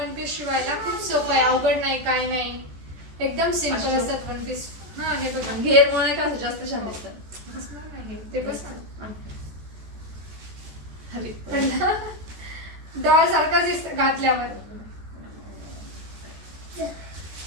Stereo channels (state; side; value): late; left; 14 ms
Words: पीस शिवायला खूप सोपं आहे, अवघड नाही काय नाही, एकदम सिंपल असतात वन पीस. हा हे बघा घेर मुळे का जास्त छान दिसतं. ते बस डॉल सारखाच दिसत घातल्यावर.